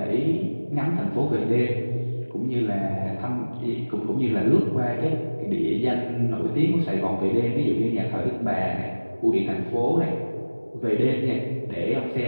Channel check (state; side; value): inverted; both; correlation -1.00